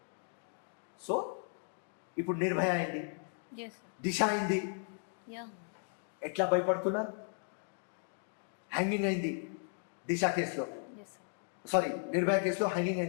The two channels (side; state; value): right; silent; 54 dB below the other